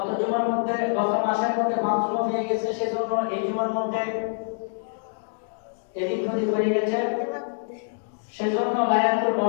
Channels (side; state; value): right; silent; digital silence